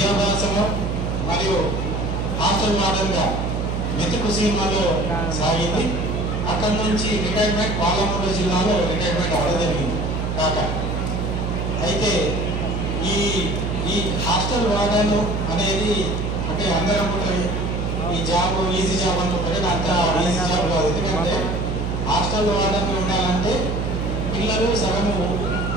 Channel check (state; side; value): noise; right; hum, 1 dB below the sound